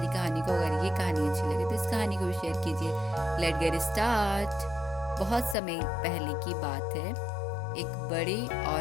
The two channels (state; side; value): drops out; right; at 5.6 s